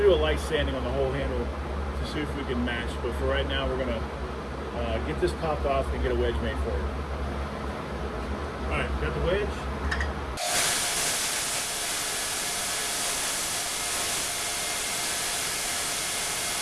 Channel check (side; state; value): both; identical; correlation 1.00